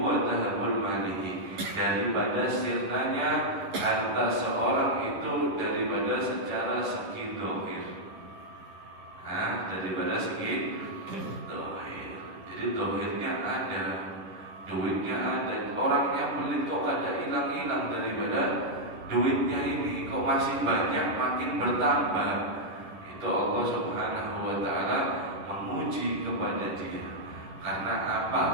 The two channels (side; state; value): left; late; 11 ms